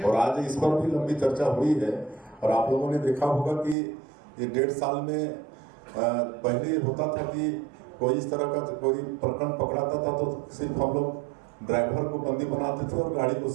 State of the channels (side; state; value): left; drops out; at 3.8 s